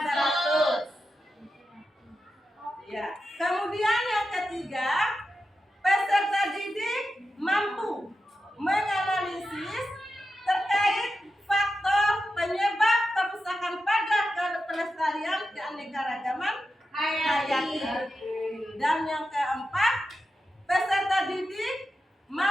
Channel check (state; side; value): normal; both; correlation 0.90